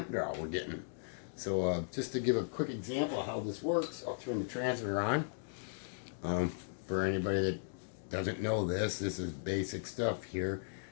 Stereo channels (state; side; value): silent; right; digital silence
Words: draw we're getting. So just to give a quick example of how this works, I'll turn the transmitter on. For anybody that doesn't know this, this is basic stuff here.